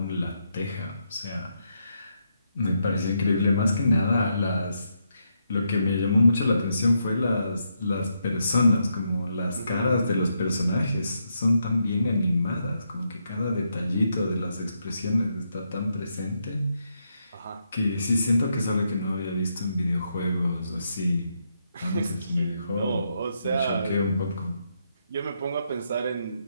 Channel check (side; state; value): both; inverted; correlation -0.80